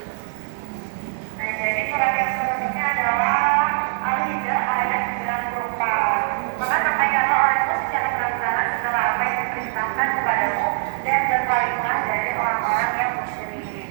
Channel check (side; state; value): left; silent; digital silence